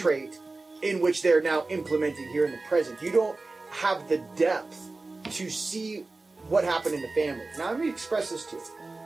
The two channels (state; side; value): quieter; left; 3.4 dB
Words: in which they're now implementing here in the present. You don't have the depth to see what happened in the family. Now, let me express this to you.